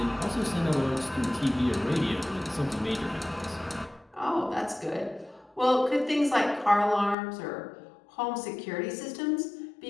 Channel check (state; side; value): drops out; right; at 7.2 s